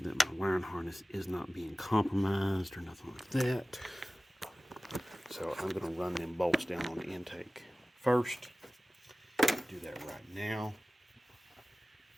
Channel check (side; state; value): both; normal; correlation 0.97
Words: my wiring harness is not being compromised or nothing like that. So I'm going to run them bolts down on the intake first. Do that right now.